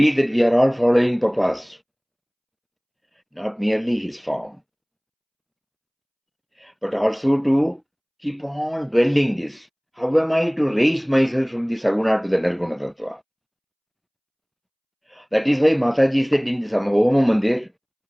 that we are all following Papa's, not merely his form, but also to keep on dwelling this, How am I to raise myself from the Saguna to the Nirguna Tattva? That is why Mataji said in the Homa Mandir,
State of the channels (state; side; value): identical; both; correlation 1.00